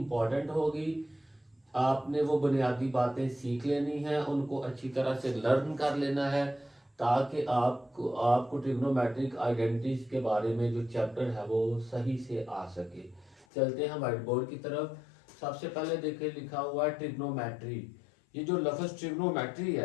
होगी। आपने वो बुनियादी बातें सीख लेनी है, उनको अच्छी तरह से लर्न कर लेना है, ताकि आपको ट्रिग्नोमेट्रिक आइडेंटिटीज के बारे में जो चैप्टर है वो सही से आ सके। चलते हैं व्हाइट बोर्ड की तरफ। सबसे पहले देखिए, लिखा हुआ है ट्रिग्नोमेट्री। ये जो लफ्ज ट्रिग्नोमेट्री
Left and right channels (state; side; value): drops out; right; at 13.5 s